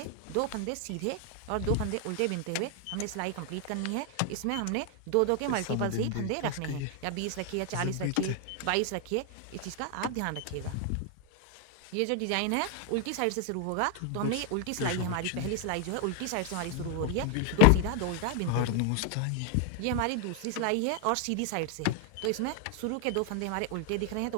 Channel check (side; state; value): both; different; correlation 0.01